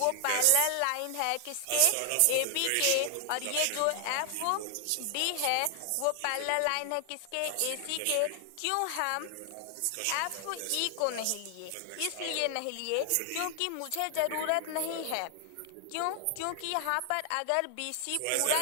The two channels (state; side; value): different; both; correlation 0.00